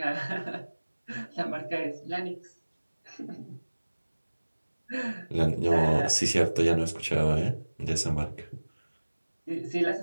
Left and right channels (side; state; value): both; inverted; correlation -1.00